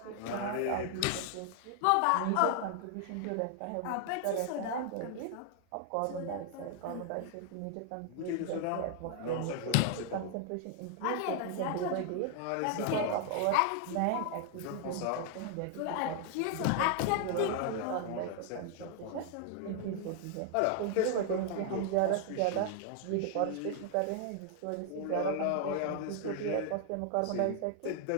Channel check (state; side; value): different; both; correlation 0.00